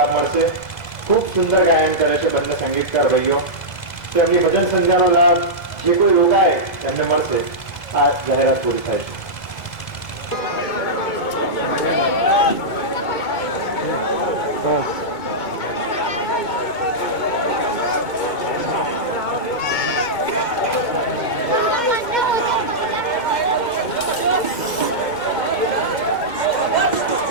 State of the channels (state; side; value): late; right; 2.0 ms